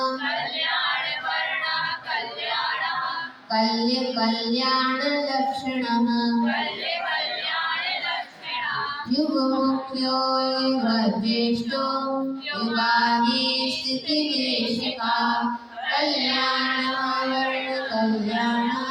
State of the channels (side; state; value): both; identical; correlation 1.00